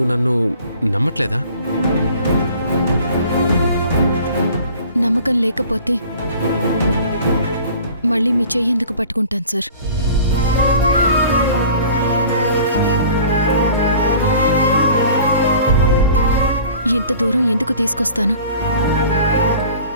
నన్ను నమ్మట్లేదా? నమ్మకం లేకపోతే మళ్ళీ మీ చెయ్యి ఎందుకు పట్టుకుంటాను సార్? ఇంత దూరం ఎందుకు తీసుకొస్తాను?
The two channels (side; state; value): both; inverted; correlation -0.46